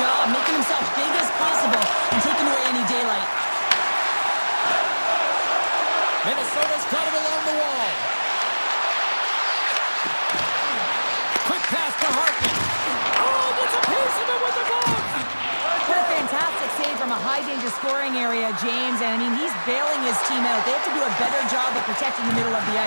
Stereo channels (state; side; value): inverted; both; correlation -1.00